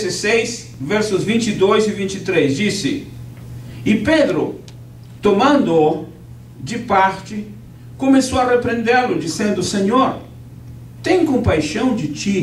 versos 22 e 23, disse: E Pedro, tomando-o de parte, começou a repreendê-lo, dizendo: Senhor, tem compaixão de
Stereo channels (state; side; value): identical; both; correlation 1.00